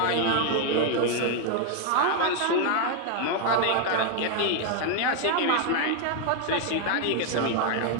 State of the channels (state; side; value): different; both; correlation 0.01